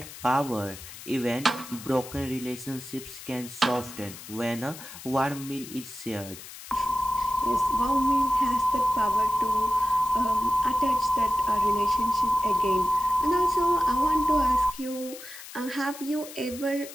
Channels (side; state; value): left; noise; hiss, 14 dB below the sound